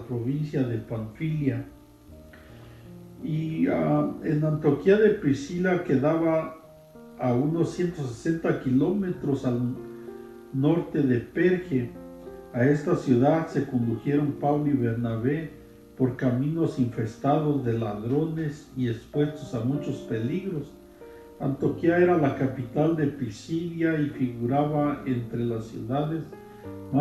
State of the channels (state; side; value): identical; both; correlation 1.00